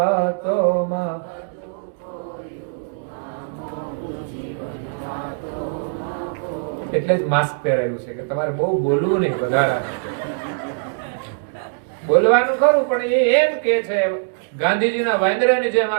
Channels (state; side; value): silent; left; digital silence